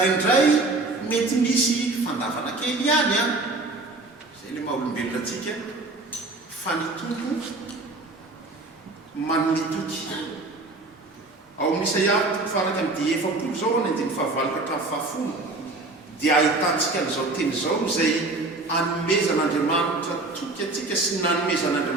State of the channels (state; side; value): quieter; left; 3.2 dB